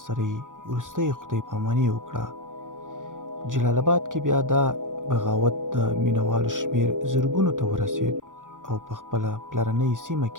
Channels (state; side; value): late; left; 0.88 ms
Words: سره یې وروستۍ خدای پاماني وکړه. جلال آباد کې بیا دا بغاوت د مینوالو شمېر زرګونو ته ورسېد او په خپله پلرنۍ سیمه